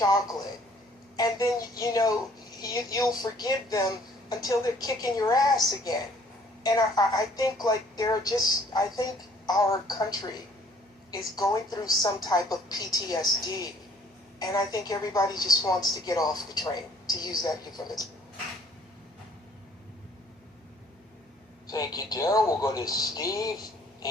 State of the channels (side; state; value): both; normal; correlation 0.59